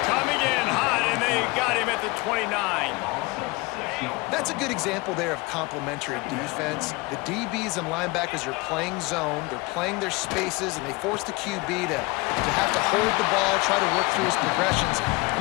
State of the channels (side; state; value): right; quieter; 24.3 dB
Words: coming in hot, and they got him at the 29. That's a good example there of complementary defense. The DBs and linebackers are playing zone, they're playing their spaces, and they force the QB to have to hold the ball, try to work through his progressions, and